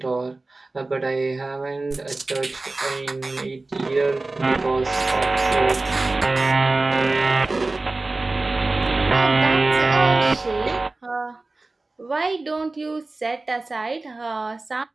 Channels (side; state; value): left; quieter; 3.2 dB